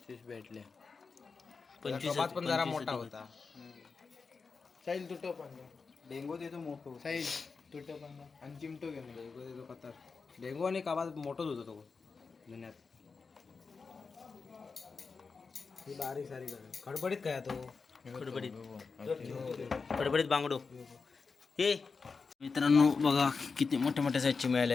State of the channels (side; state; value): right; quieter; 4.8 dB